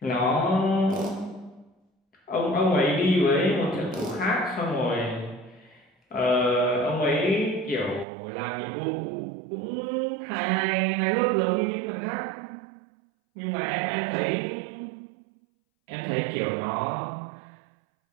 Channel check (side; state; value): left; drops out; at 8.1 s